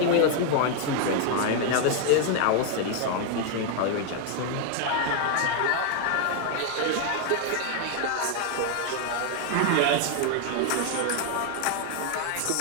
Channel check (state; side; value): different; both; correlation 0.00